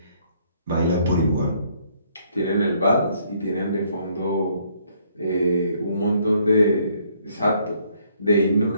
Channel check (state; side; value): inverted; both; correlation -0.67